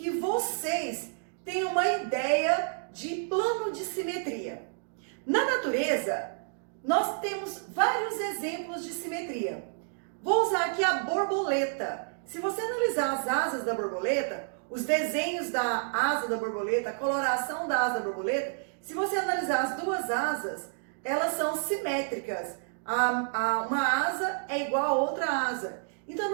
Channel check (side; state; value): left; silent; digital silence